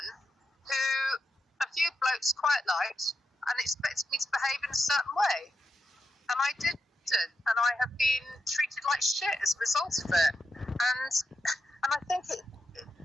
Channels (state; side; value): normal; both; correlation 0.86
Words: who a few blokes quite liked and expected me to behave in a certain way. And I didn't. And I have been treated like shit as a result of it. And I think